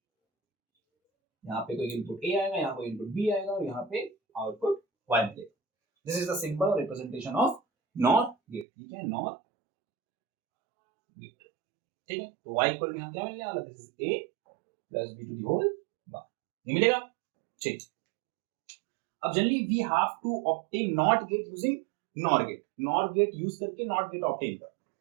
यहाँ पे कोई इनपुट ए आएगा, यहाँ कोई इनपुट बी आएगा, और यहाँ पे आउटपुट y मिलेगा। दिस इज द सिंबल और रिप्रेजेंटेशन ऑफ नॉर गेट। ठीक है, नॉर गेट। ठीक है, तो y इक्वल टू यहाँ क्या मिलने वाला? This is a plus b to the whole bar, ये मिलेगा। ठीक, अब generally we have to obtain NOT gate using NOR gate. NOR gate use करके नॉट गेट ऑब्टेन कर,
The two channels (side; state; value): left; drops out; at 8.7 s